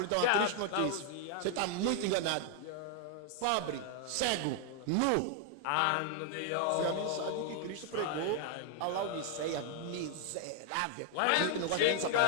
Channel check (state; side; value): different; both; correlation 0.00